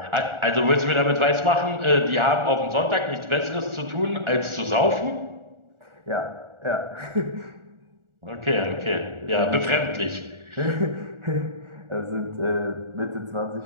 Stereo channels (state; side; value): late; left; 1.4 ms